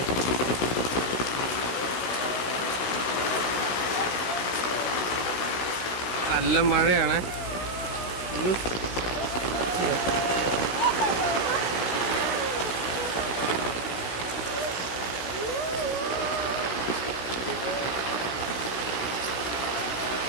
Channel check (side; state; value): right; late; 16 ms